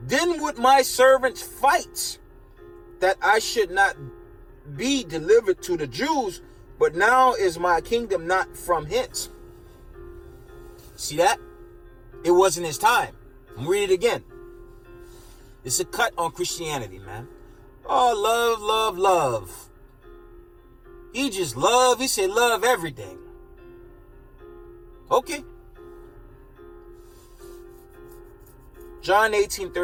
then would my servants fight, that I should not be delivered to the Jews, but now is my kingdom not from hence. See that? It wasn't his time. Read it again. It's a cut on Christianity, man. Oh, love, love, love. He just love. He said love everything. Okay. John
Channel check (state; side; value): identical; both; correlation 1.00